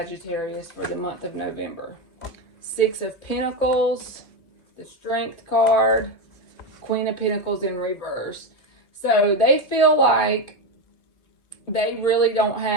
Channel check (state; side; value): late; right; 2.5 ms